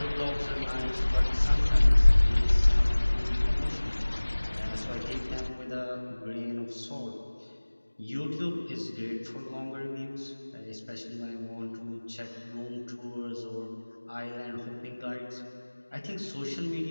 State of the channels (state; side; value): inverted; both; correlation -1.00